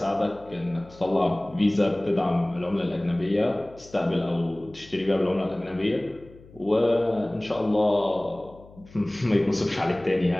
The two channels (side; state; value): left; noise; hum, 23 dB below the sound